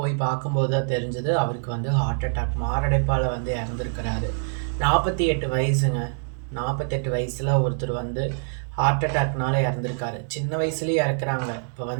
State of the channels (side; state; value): left; silent; 62 dB below the other